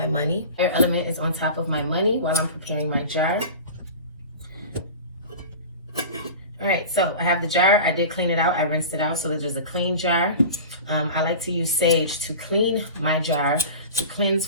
money. Air element is on top of my money while I'm preparing my jar. All right, so I have the jar. I did clean it out. I rinsed it out so that there's a clean jar. I like to use sage to clean my jar, to cleanse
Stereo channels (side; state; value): both; inverted; correlation -0.34